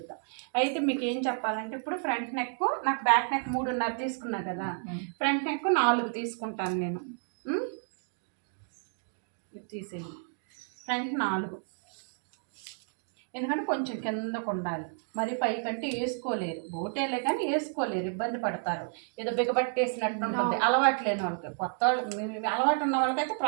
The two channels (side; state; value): left; silent; 57 dB below the other